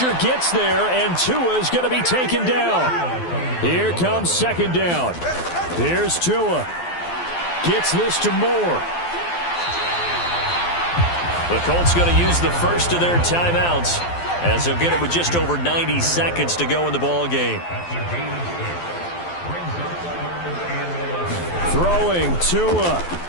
gets there, and Tua is going to be taken down. Here comes second down. Here's Tua. Gets this to Moore. The Colts going to use the first of their timeouts, as they'll get it with just over 90 seconds to go in the ball game. Throwing Tua.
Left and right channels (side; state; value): right; late; 12 ms